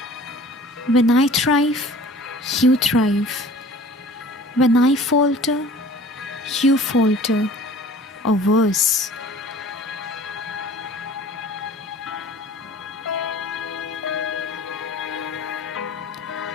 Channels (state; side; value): normal; both; correlation 0.46